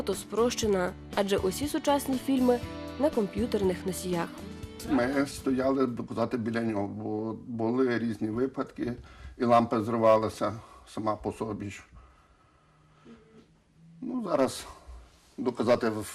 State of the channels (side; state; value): both; identical; correlation 1.00